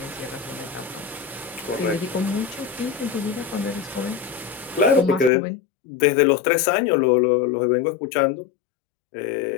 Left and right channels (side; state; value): right; drops out; at 5.3 s